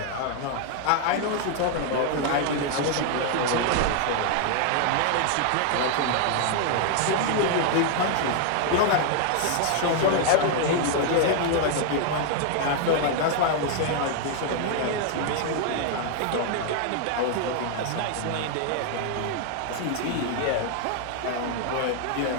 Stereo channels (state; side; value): different; both; correlation 0.00